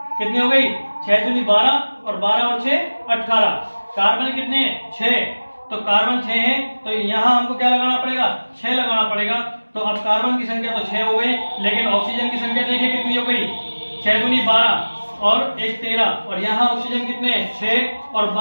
कितनी हो गई? 6 दूनी 12 और 12 और 6 18। कार्बन कितने हैं? 6। तो कार्बन 6 है, तो यहाँ हमको क्या लगाना पड़ेगा? 6 लगाना पड़ेगा। तो अब कार्बन की संख्या तो 6 हो गई, लेकिन ऑक्सीजन की संख्या देखिए कितनी हो गई? 6 दूनी 12 और 1 13। और यहाँ ऑक्सीजन कितने? 6 और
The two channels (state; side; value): inverted; both; correlation -1.00